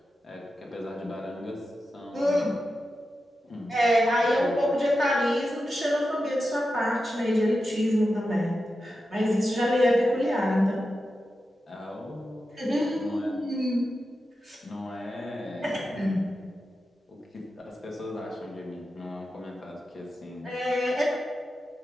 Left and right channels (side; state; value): both; normal; correlation 0.90